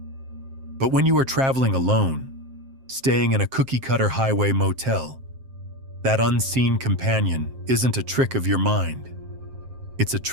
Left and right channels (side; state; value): left; late; 7.5 ms